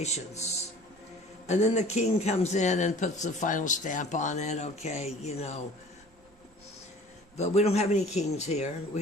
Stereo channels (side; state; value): right; noise; rumble, 29 dB below the sound